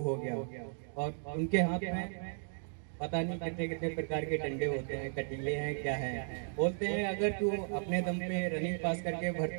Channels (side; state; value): left; silent; digital silence